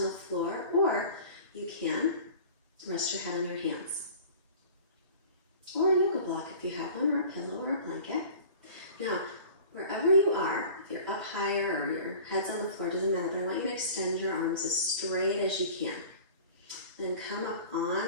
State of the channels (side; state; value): both; inverted; correlation -0.42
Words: the floor, or you can rest your head on your hands. Or a yoga block if you have one, or a pillow or a blanket. Now, wherever you are, if you're up higher or your head's on the floor, doesn't matter, but I want you to extend your arms as straight as you can. Then come up